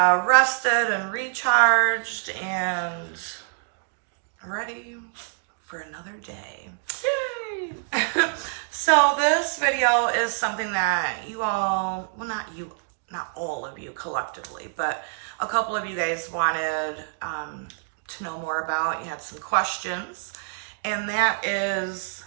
rested and recharged and ready for another day. Yay! So this video is something that you all, well, not all of you collectively, but a couple of you guys wanted to know more about. You had some questions, and that is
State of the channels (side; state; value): left; silent; digital silence